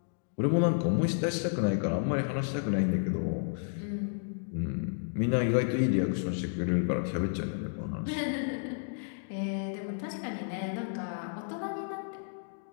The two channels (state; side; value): silent; right; digital silence